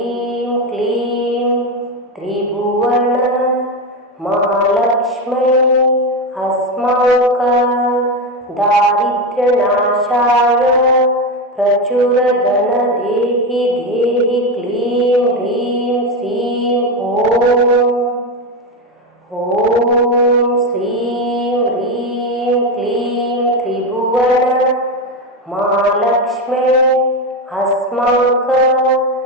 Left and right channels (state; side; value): normal; both; correlation 0.14